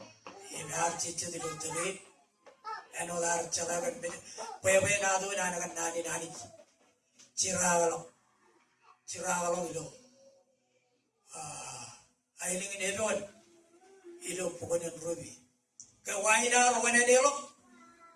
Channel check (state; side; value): identical; both; correlation 1.00